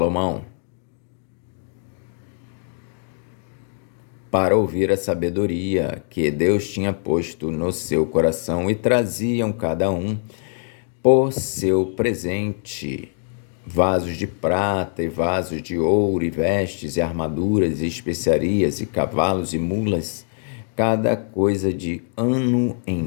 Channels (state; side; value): silent; right; digital silence